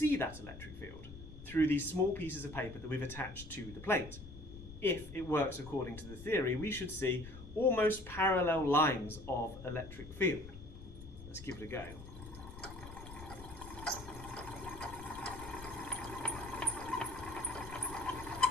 that electric field through these small pieces of paper that we've attached to the plate. If it works according to the theory, we should see almost parallel lines of electric field. Let's give it a go.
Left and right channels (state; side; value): noise; left; rumble, 14 dB below the sound